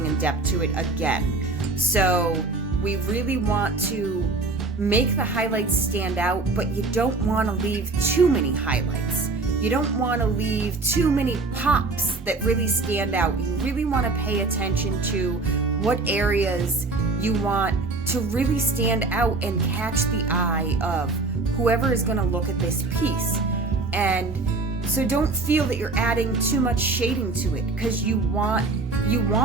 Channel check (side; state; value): left; quieter; 3.6 dB